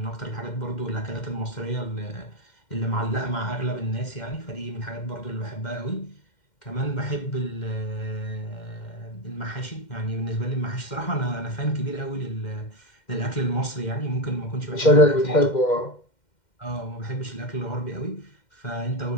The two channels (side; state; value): right; late; 2.1 ms